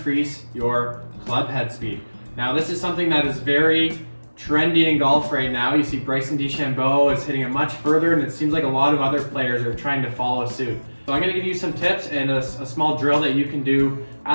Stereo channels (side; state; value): both; inverted; correlation -1.00